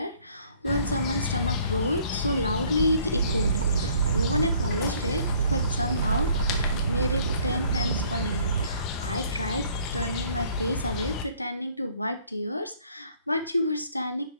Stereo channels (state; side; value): inverted; both; correlation -0.59